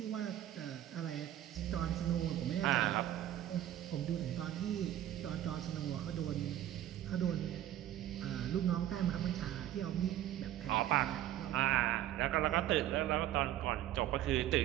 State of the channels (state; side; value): quieter; left; 12.6 dB